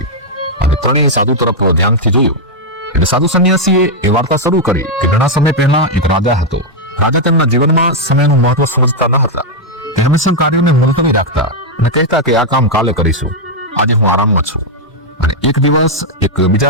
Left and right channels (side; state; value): both; normal; correlation -0.01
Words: અને ત્રણેય સાધુ તરફ ધ્યાનથી જોયું એટલે સાધુ સંન્યાસીએ એ વાર્તા શરૂ કરી કે ઘણા સમય પહેલા એક રાજા હતો રાજા તેમના જીવનમાં સમયનું મહત્વ સમજતા ન હતા. તે હંમેશા કાર્યોને મુલતવી રાખતા અને કહેતા કે આ કામ કાલે કરીશું, આજે હું આરામમાં છું. અને એક દિવસ એક